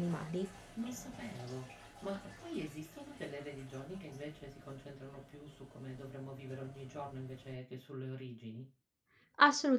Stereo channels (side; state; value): both; identical; correlation 1.00